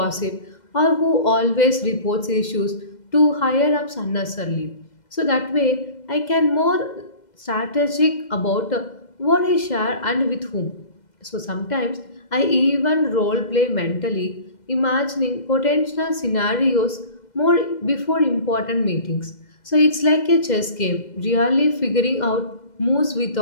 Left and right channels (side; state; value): right; late; 2.0 ms